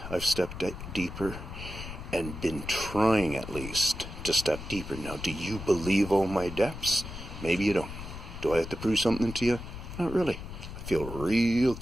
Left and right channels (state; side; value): noise; left; rumble, 10 dB below the sound